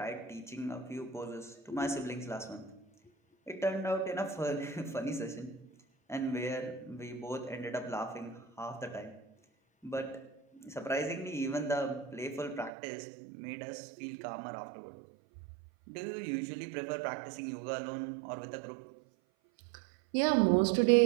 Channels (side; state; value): left; drops out; at 12.7 s